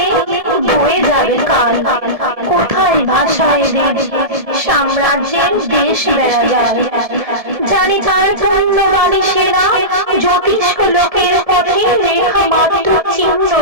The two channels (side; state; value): left; late; 1.7 ms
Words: বয়ে যাবে কাল, কোথায় ভাষায় দেব সাম্রাজ্যের দেশ বেড়া যায়। জানি তার পুণ্যবাণী সেনা জ্যোতিষ্ক লোকের পথে রেখা মাত্র চিহ্ন